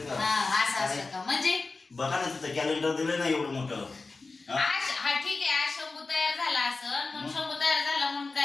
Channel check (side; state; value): right; quieter; 3.8 dB